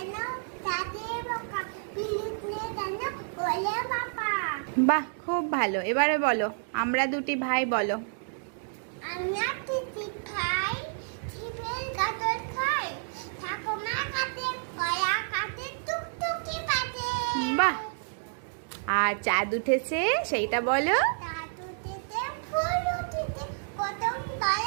বাহ, খুব ভালো। এবারে বলো, আমরা দুটি ভাই বলো। বাহ। আর চাঁদ উঠেছে সেইটা বলো।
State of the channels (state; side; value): silent; left; digital silence